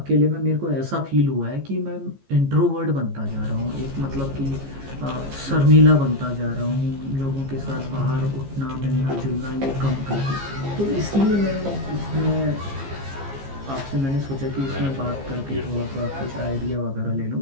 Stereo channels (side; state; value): left; late; 15 ms